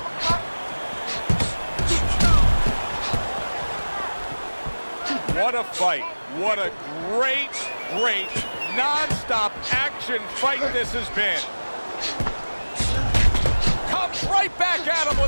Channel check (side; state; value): both; inverted; correlation -1.00